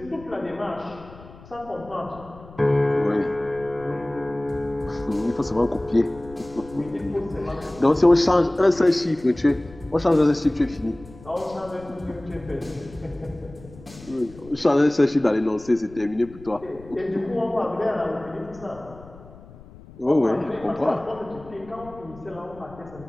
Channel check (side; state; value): left; noise; rumble, 20 dB below the sound